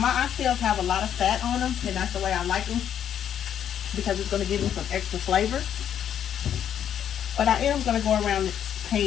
oxtails have a lot of fat on them, and that's the way I like them because it's going to give them some extra flavor. But I am going to go around the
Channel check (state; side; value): quieter; right; 9.5 dB